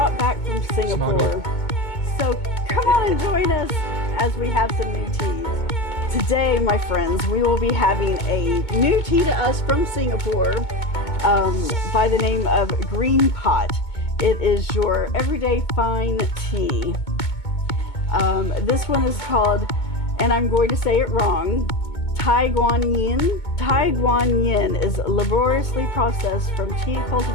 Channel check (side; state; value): right; late; 2.2 ms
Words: back from Singapore. So come on and join us as we have some new teas. Today, my friends, we will be having a new tea to us from Singapore by the name of Green Pot. It is your everyday fine tea. This one is called, and I'm going to say it wrong, Guan Yin. Guan Yin is laboriously processed from tea